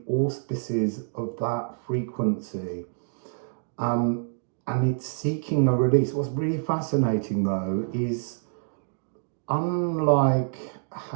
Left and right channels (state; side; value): silent; left; digital silence